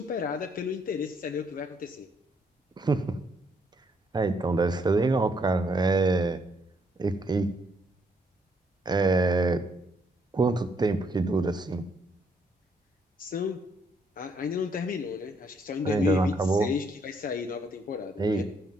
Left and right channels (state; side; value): normal; both; correlation 0.71